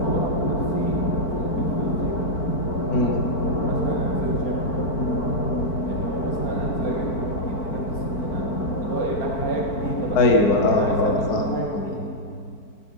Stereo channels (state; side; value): late; right; 4.5 ms